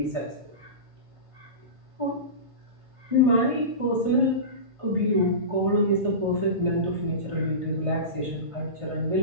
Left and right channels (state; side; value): late; left; 1.5 ms